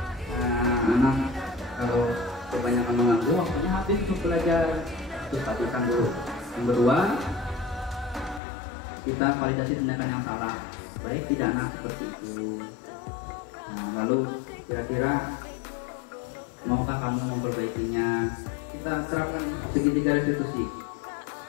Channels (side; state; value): right; drops out; at 8.4 s